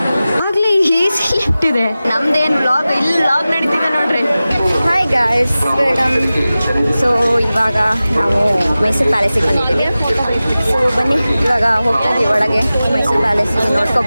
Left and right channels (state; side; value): inverted; both; correlation -0.96